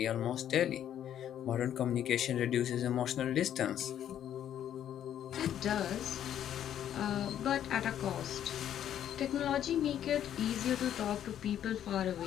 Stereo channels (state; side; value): quieter; right; 10.4 dB